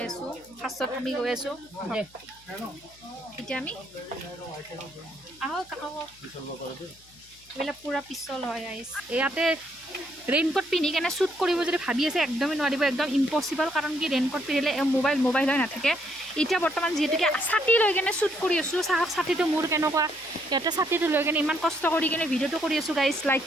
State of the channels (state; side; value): noise; left; hum, 28 dB below the sound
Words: আছোঁ ফাৰ্ষ্টত আমি গৈ আছোঁ এতিয়া আমি আহক এইবিলাক পূৰা পিছল হয় আইচ ইয়াতে ৰেইনকোট পিন্ধি কেনে শ্বুট কৰিব যদি ভাবি আছে একদমেই নোৱাৰিব একদম ইম্পচিবল কাৰণ কি ৰেইনকোট পিন্ধিলে মোবাইল হৈ নাথাকে এতিয়া বৰ্তমান যিহেতুকে ছাতি লৈ কেনে শ্বুট কৰি আছোঁ চাওক ছাতিটো মোৰ কেনেকুৱা ইয়াতে ছাতিটো লৈ কেনে ইমান কষ্ট কৰি কেনে ভিডিঅ'টো কৰি আছোঁ গাইজ লাইক